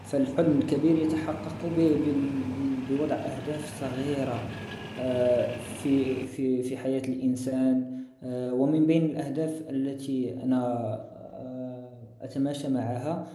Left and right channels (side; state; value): both; identical; correlation 1.00